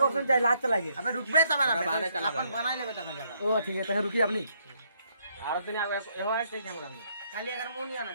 चाहिए लात चला के अबे रुकबे तब ना अपन बना लेबे तब जगह ओ ठीक है तो रुकी अपनी आरो तने एहो है के कैमरा में खाली अगर मुंह नहीं आना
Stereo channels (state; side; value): inverted; both; correlation -0.72